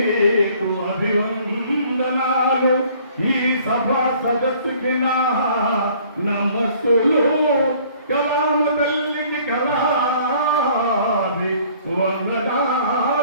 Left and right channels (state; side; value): inverted; both; correlation -0.56